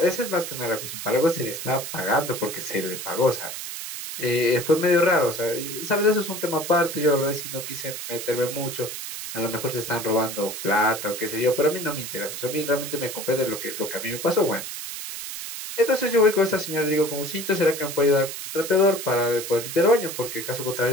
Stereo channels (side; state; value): right; noise; hiss, 7 dB below the sound